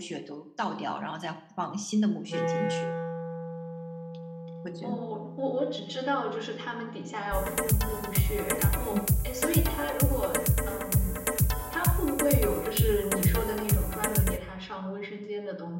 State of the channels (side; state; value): both; identical; correlation 1.00